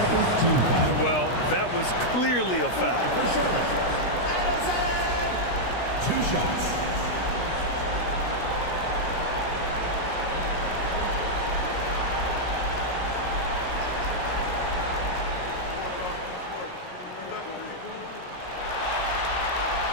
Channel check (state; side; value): late; right; 16 ms